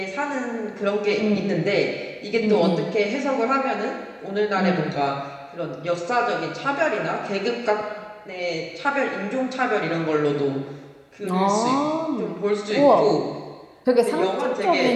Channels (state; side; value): identical; both; correlation 1.00